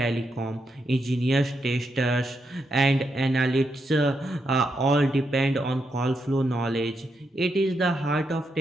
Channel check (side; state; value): both; normal; correlation 0.82